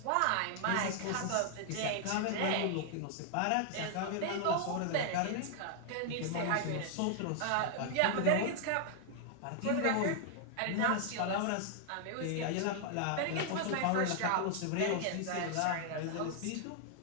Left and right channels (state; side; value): different; both; correlation 0.00